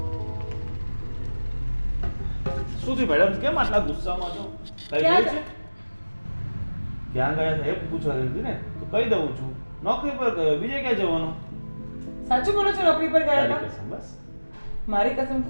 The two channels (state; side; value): inverted; both; correlation -1.00